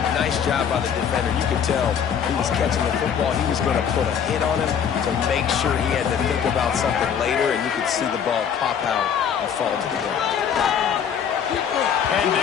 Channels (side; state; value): right; quieter; 7.9 dB